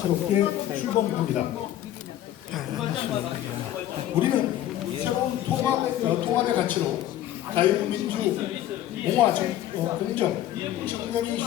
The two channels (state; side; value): quieter; right; 12.8 dB